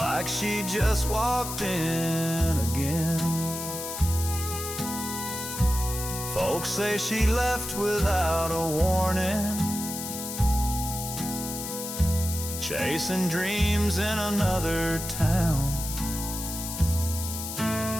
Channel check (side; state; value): left; noise; hiss, 6 dB below the sound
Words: she just walked in again. Folks say she left without a warning, chasing dreams in another town.